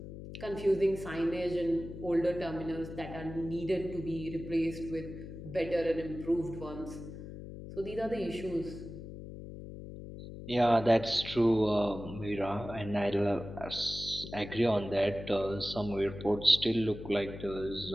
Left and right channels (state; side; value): noise; left; hum, 11 dB below the sound